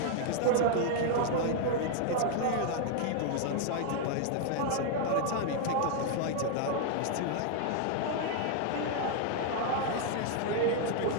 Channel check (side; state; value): both; different; correlation 0.00